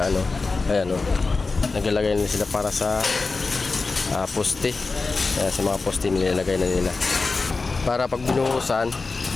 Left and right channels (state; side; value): quieter; right; 3.9 dB